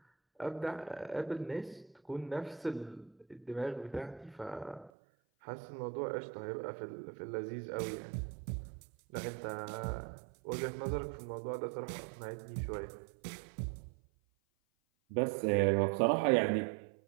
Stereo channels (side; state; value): left; drops out; at 4.9 s